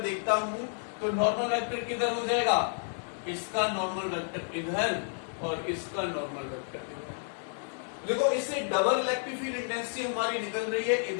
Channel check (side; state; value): right; silent; 57 dB below the other